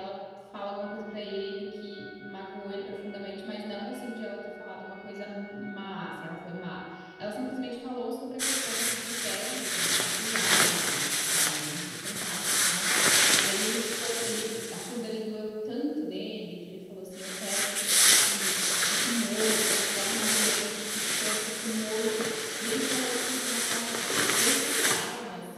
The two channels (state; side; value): identical; both; correlation 1.00